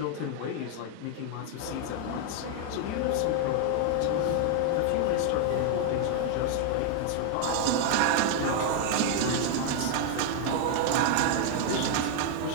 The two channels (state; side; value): different; both; correlation 0.00